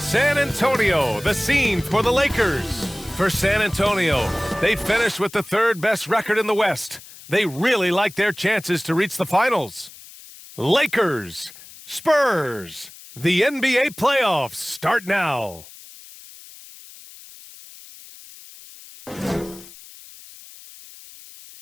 Antonio, the scene for the Lakers. For San Antonio, they finished with the third best record in the West. They really like their chances to reach the finals. Lakers, Spurs, the NBA playoffs start now.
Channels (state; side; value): noise; left; hiss, 19 dB below the sound